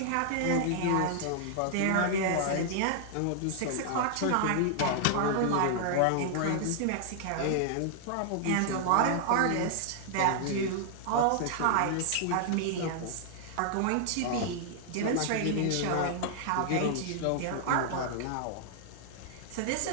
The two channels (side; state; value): both; different; correlation -0.01